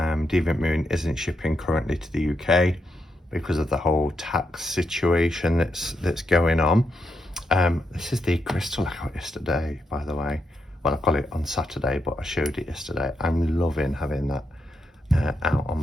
Moon isn't shipping currently to the UK because of the whole tax situation that's going on. This is the crystal I got yesterday, by the way. Well, I got it on Saturday, but I showed it yesterday. I'm loving having that out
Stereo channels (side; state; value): both; normal; correlation 0.82